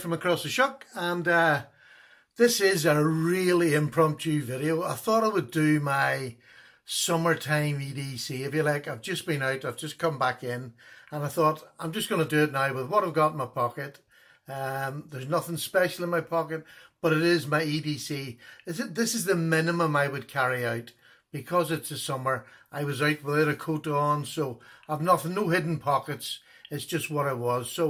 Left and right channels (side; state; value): both; identical; correlation 1.00